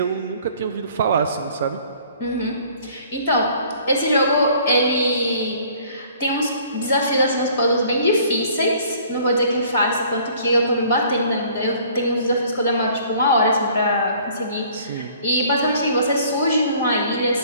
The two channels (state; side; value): inverted; both; correlation -0.55